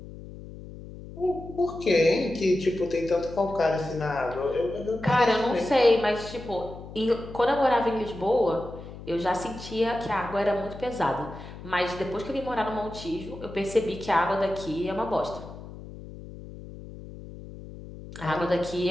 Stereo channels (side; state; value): left; noise; hum, 14 dB below the sound